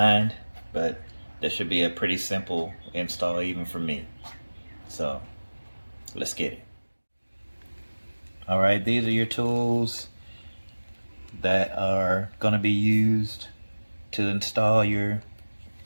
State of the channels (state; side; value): inverted; both; correlation -1.00